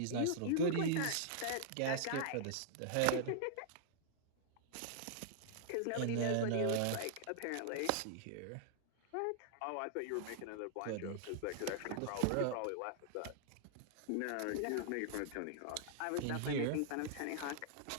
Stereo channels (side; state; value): both; different; correlation -0.01